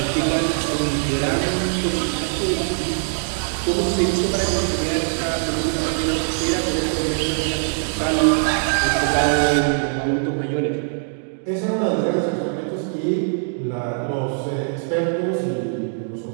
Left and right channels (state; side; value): silent; left; digital silence